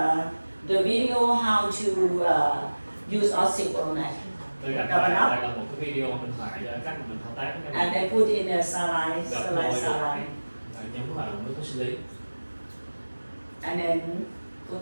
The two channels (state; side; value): inverted; both; correlation -1.00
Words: the video how to use Oxychromac. Tôi đặt đây là một cái video mình phải cách mà mình thao tác cái And này. I put in a saline. Và nhấn vào nước có xử lý. And then put